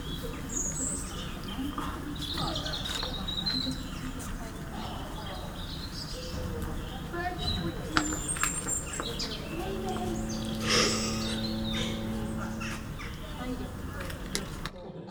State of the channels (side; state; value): both; identical; correlation 1.00